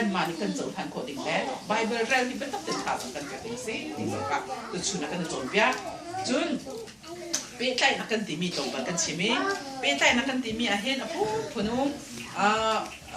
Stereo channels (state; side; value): identical; both; correlation 1.00